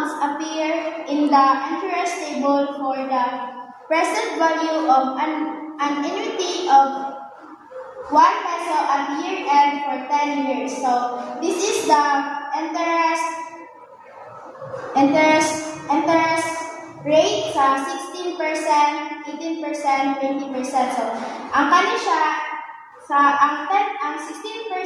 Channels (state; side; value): identical; both; correlation 1.00